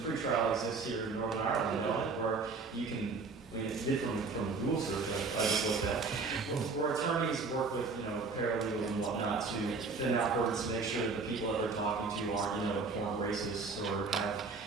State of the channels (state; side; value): quieter; left; 4.3 dB